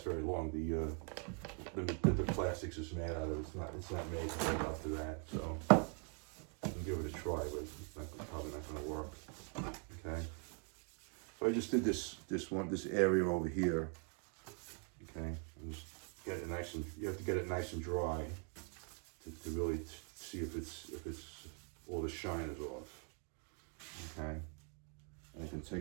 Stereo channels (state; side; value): quieter; left; 40.0 dB